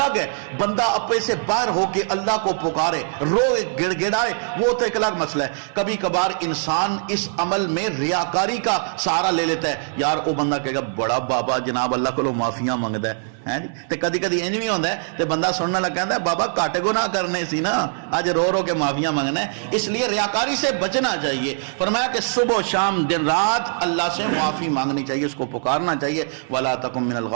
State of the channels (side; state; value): left; silent; digital silence